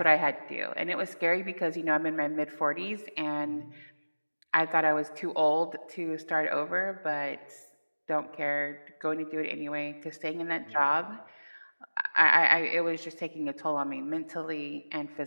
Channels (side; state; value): both; inverted; correlation -1.00